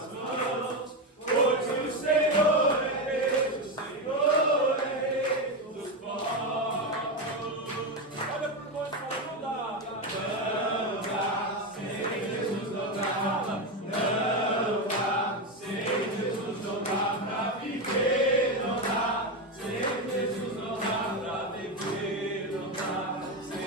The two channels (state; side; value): normal; both; correlation 0.12